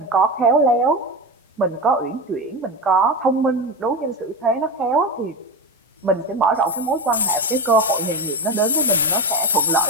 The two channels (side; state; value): both; normal; correlation 0.19